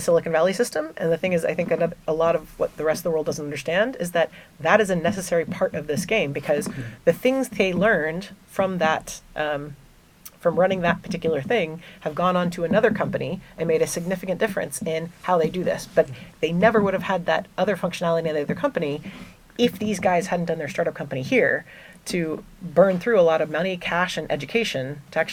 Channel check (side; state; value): both; identical; correlation 1.00